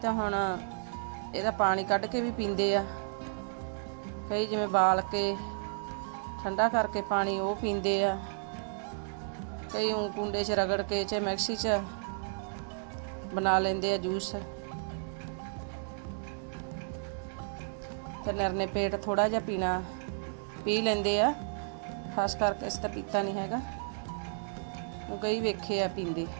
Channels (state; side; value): silent; left; digital silence